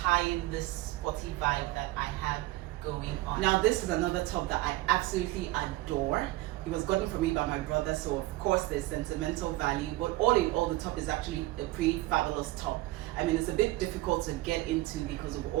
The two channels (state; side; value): quieter; left; 18.6 dB